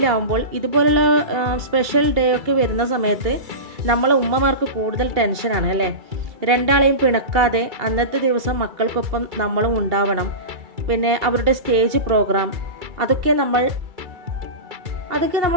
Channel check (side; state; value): left; late; 2.3 ms